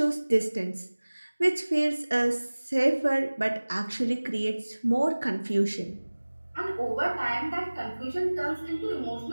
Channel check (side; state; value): both; inverted; correlation -1.00